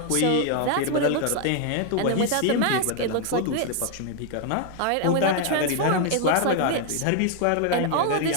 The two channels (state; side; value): different; both; correlation 0.00